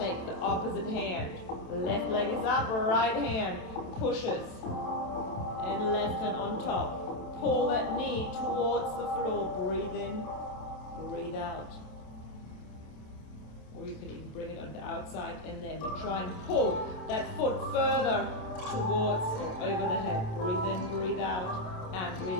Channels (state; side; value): late; right; 27 ms